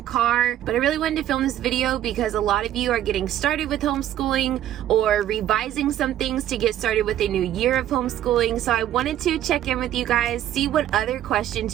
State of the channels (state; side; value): quieter; left; 11.9 dB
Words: car, but I really wanted to film this video because a lot of you are getting started with homeschooling or revising some things to get started with a new year of homeschooling. So I wanted to check in with you guys, see what other questions